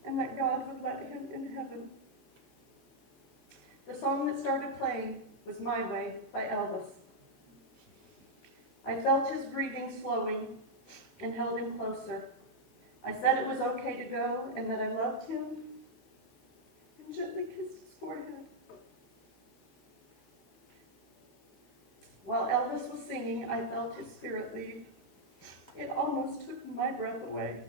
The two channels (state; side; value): normal; both; correlation -0.04